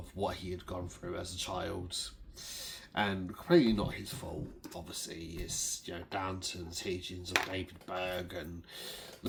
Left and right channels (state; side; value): identical; both; correlation 1.00